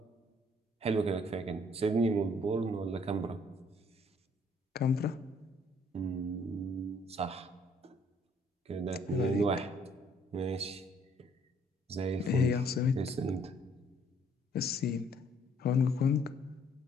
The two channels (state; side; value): normal; both; correlation 0.63